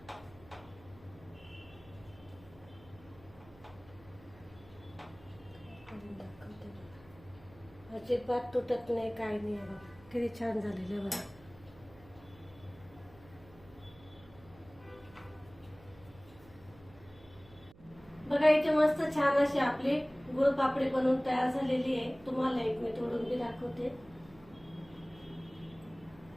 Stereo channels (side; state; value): right; noise; hum, 22 dB below the sound